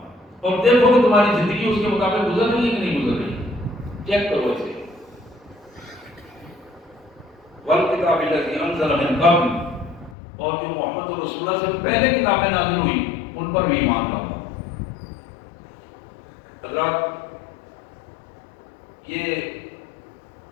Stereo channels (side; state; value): right; drops out; at 10.2 s